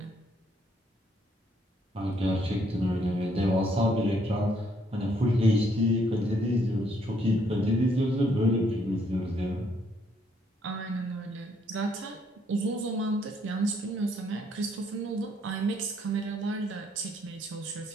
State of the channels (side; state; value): both; normal; correlation 0.69